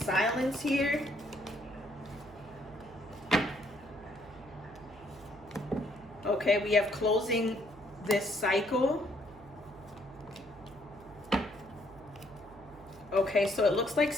here. Okay, we have closing this cycle. Okay, so it looks like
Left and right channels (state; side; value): noise; right; hum, 21 dB below the sound